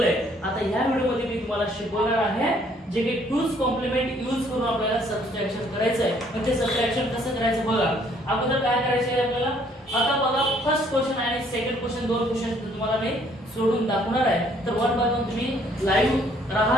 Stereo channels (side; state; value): both; normal; correlation 0.63